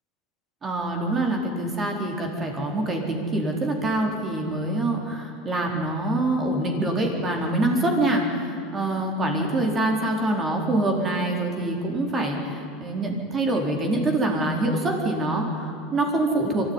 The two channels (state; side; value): normal; both; correlation 0.44